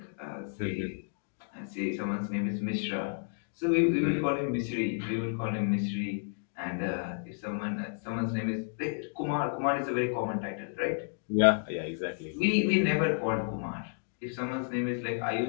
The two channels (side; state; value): right; silent; digital silence